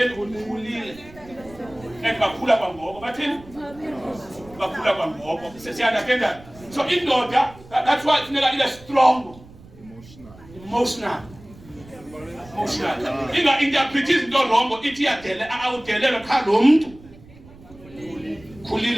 ukhulile. Bakhula kwangoko. Bathini? Bakhula kwangoko. Siyaunderstand. So indoda, that's why funeka ibe strong. Emotional. Inga interpret izinto wrong ithi yadele awudelelwe cha lo muntu.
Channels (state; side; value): noise; right; rumble, 21 dB below the sound